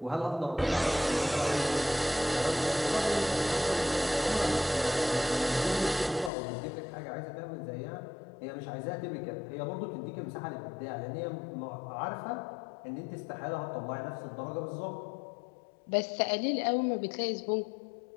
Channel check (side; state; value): right; drops out; at 6.3 s